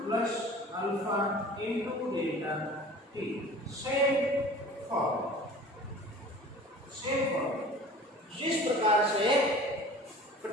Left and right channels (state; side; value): normal; both; correlation 0.43